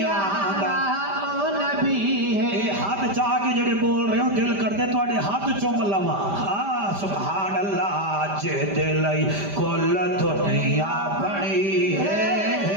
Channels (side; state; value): left; late; 5.1 ms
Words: آدھا او نبی ہے ہاتھ چاہ کے جڑے بول رہے ہو دل کرتے تو اڑے ہاتھ چوم لوا سبحان اللہ جہد لئی کل دنیا بڑی